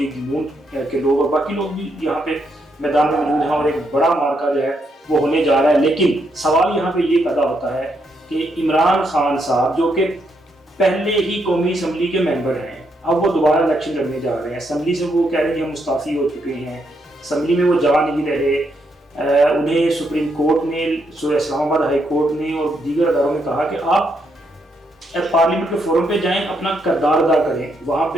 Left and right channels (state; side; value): normal; both; correlation 0.78